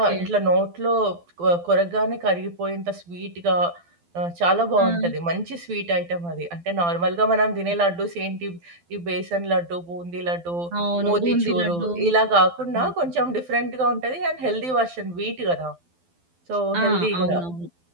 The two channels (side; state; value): left; late; 12 ms